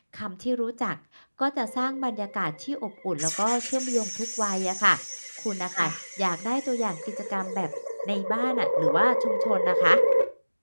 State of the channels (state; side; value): inverted; both; correlation -1.00